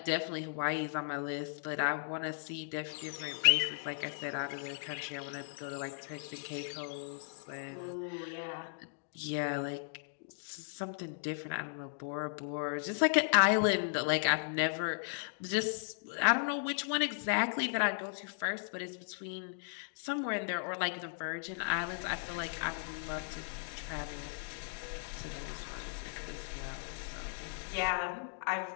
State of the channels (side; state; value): right; silent; digital silence